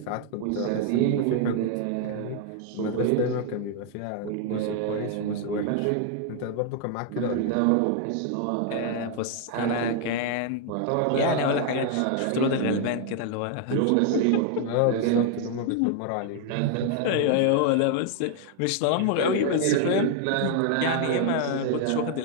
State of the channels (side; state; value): both; different; correlation 0.00